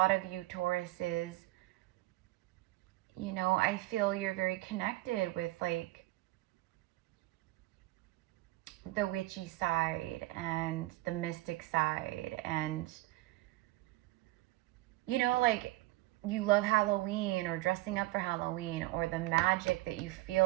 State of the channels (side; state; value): left; quieter; 18.4 dB